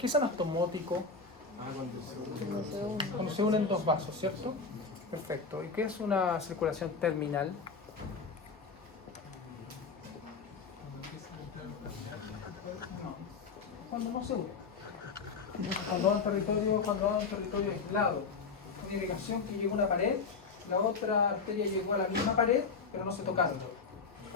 es anastomótico? Cuando se unen dos vasos, ¿cierto? Perfecto. ¿Y qué es una circulación terminal? Cuando no se unen. cuando va a un territorio aislado, una irrigación que llegó a una pared, la otra arteria llegó a la misma pared, pero no se tocaron.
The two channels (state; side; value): quieter; right; 4.8 dB